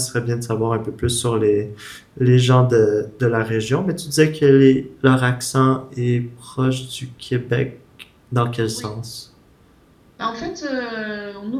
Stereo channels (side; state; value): both; identical; correlation 1.00